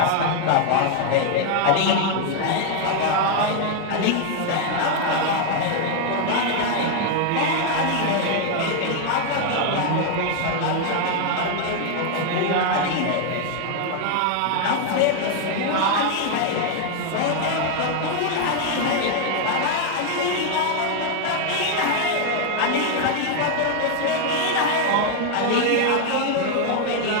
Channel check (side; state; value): both; different; correlation 0.00